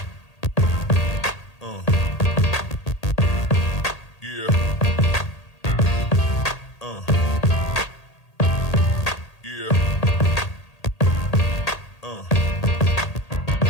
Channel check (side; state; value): right; late; 1.8 ms